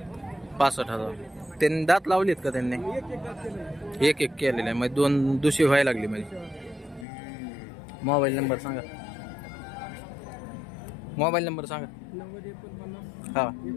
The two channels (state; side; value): drops out; right; at 7.1 s